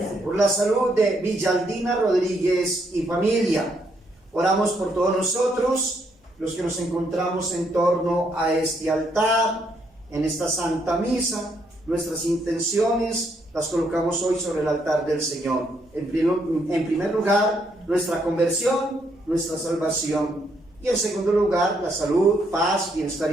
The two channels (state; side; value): normal; both; correlation 0.74